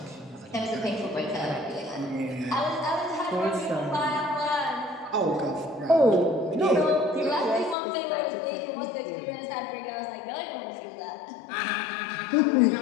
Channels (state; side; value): drops out; right; at 7.8 s